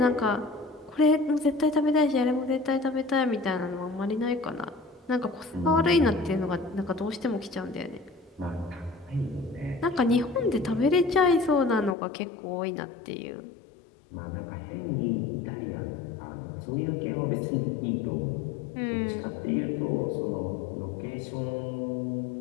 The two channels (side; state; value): right; drops out; at 12.0 s